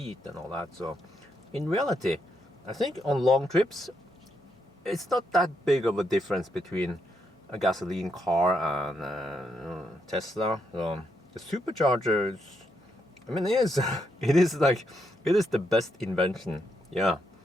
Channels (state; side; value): normal; both; correlation 0.79